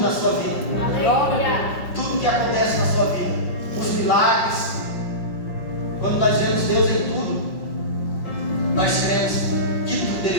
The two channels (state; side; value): late; right; 5.5 ms